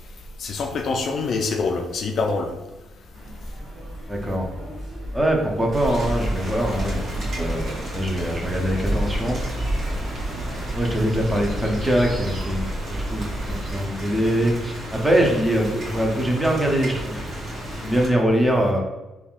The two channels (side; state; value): both; normal; correlation 0.83